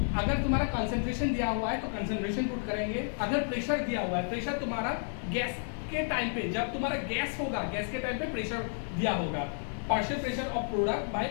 अगर तुम्हारा कंसंट्रेशन दिया हुआ है तो कंसंट्रेशन पुट करेंगे। अगर प्रेशर दिया हुआ है, प्रेशर तुम्हारा गैस के टाइम पे, जब तुम्हारा गैस होगा, गैस के टाइम पे प्रेशर दिया होगा, partial pressure of product by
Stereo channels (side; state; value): right; silent; digital silence